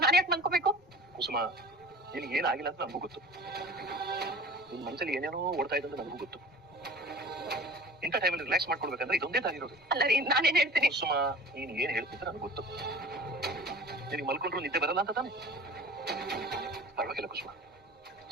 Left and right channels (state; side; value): normal; both; correlation 0.41